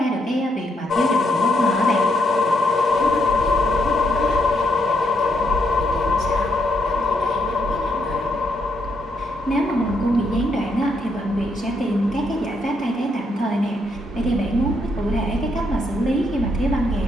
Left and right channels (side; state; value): both; normal; correlation 0.76